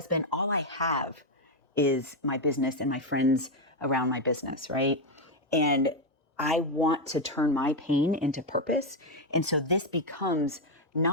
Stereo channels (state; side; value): normal; both; correlation 0.05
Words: All I have is my business and my friends around my business, right? And I want to turn my pain into purpose. And so this becomes